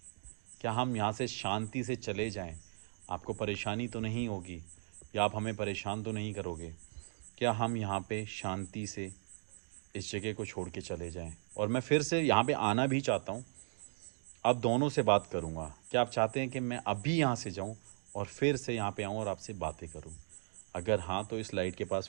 क्या हम यहाँ से शांति से चले जाएं? आपको परेशानी तो नहीं होगी या आप हमें परेशान तो नहीं करोगे? क्या हम यहाँ पे शांति से इस जगह को छोड़ के चले जाएं? और मैं फिर से यहाँ पे आना भी चाहता हूँ, अब दोनों से बात करूँगा। क्या आप चाहते हैं कि मैं अभी यहाँ से जाऊँ और फिर से यहाँ पे आऊँ और आपसे बातें करूँ? अगर हाँ तो इस लाइट के पास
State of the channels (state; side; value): silent; left; digital silence